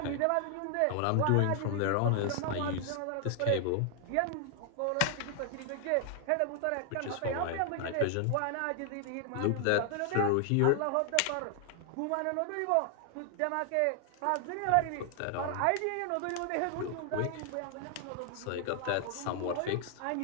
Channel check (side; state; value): both; different; correlation 0.00